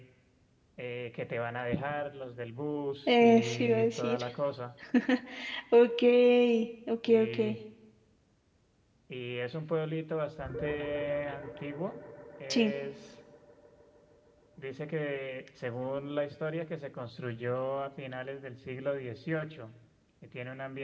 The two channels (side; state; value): both; identical; correlation 1.00